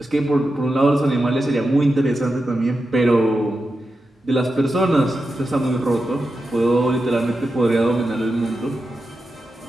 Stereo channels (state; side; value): normal; both; correlation 0.90